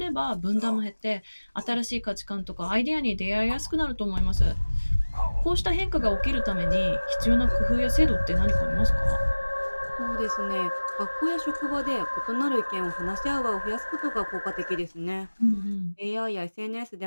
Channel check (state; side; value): inverted; both; correlation -1.00